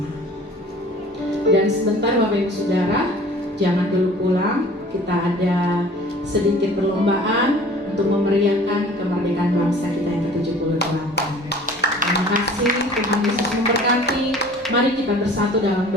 Dan sebentar Bapak Ibu Saudara, jangan dulu pulang, kita ada sedikit perlombaan untuk memeriahkan kemerdekaan bangsa kita yang ke-78. Terima kasih, Tuhan Yesus memberkati. Mari kita bersatu dalam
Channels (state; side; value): normal; both; correlation 0.47